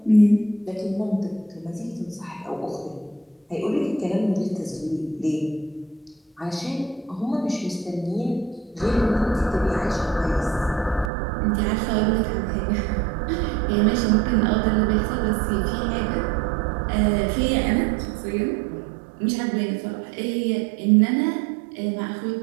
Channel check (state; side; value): drops out; left; at 11.1 s